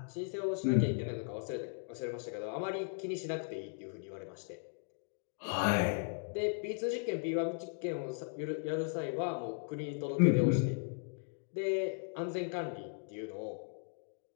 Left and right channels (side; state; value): right; silent; 53 dB below the other